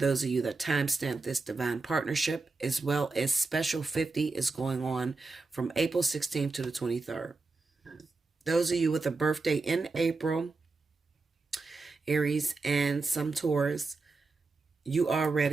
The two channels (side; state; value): left; quieter; 3.8 dB